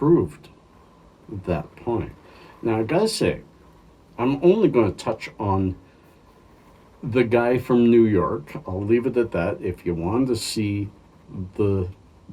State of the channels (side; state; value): both; identical; correlation 1.00